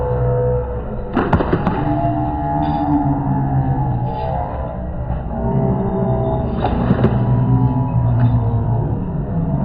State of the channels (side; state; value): both; identical; correlation 1.00